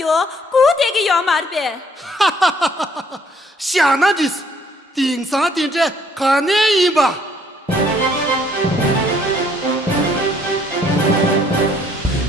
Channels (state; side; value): normal; both; correlation 0.64